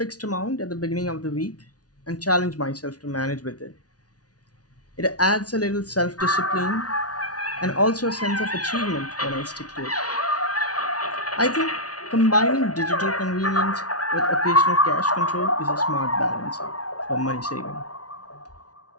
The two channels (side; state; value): right; late; 0.68 ms